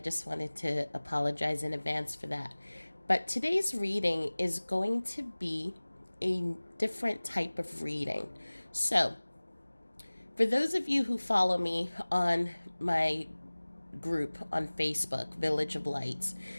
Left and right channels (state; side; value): inverted; both; correlation -1.00